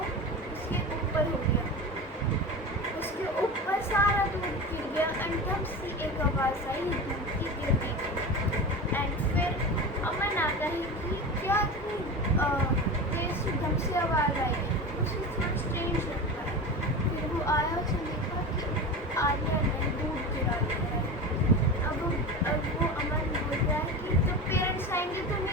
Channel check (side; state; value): both; normal; correlation 0.27